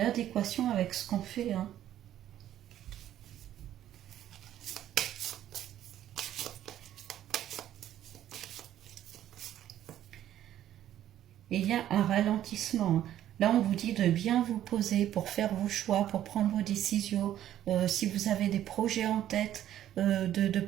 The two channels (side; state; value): left; quieter; 11.9 dB